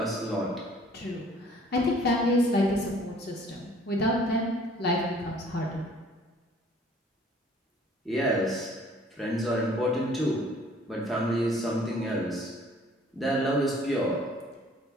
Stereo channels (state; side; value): normal; both; correlation 0.55